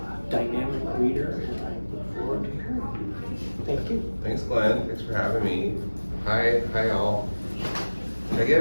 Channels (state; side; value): inverted; both; correlation -1.00